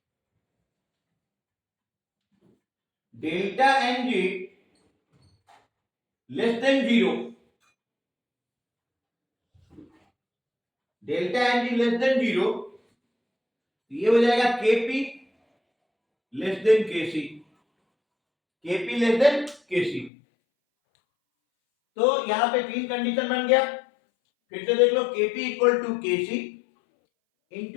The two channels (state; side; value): drops out; right; at 20.1 s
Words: delta N G less than 0, delta N G less than 0, ये हो जाएगा Kp less than Kc, Kp less than Kc। तो यहां पे तीन कंडीशन बन गया, फिर से देख लो, Kp equal to Kc